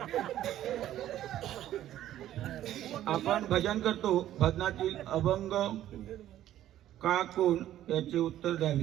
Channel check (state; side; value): quieter; left; 12.6 dB